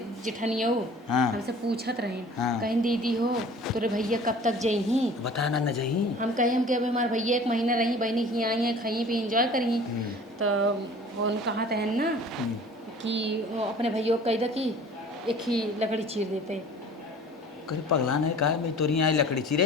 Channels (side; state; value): both; normal; correlation 0.46